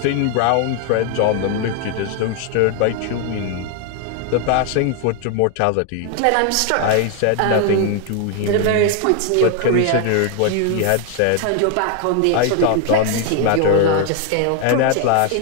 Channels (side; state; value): both; different; correlation 0.00